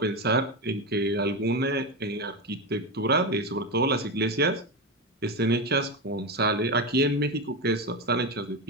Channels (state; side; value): normal; both; correlation 0.15